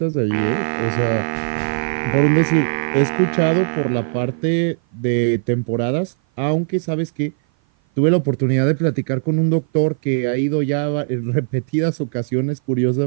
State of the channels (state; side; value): silent; left; 56 dB below the other